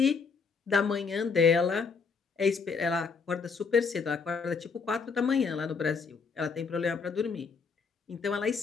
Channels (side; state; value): right; quieter; 5.2 dB